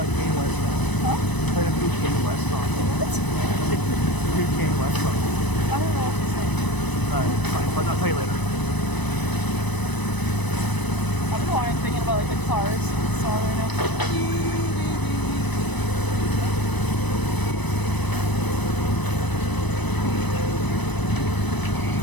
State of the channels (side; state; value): right; late; 1.0 ms